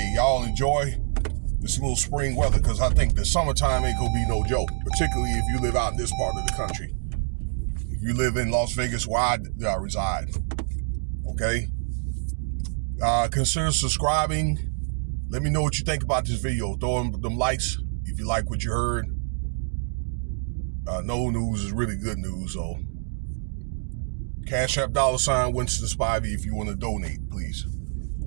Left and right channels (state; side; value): silent; left; 61 dB below the other